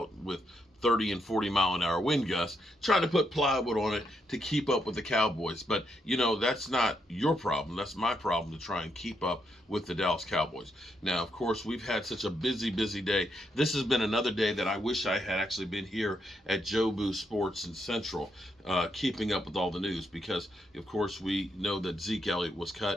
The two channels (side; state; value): both; normal; correlation 0.79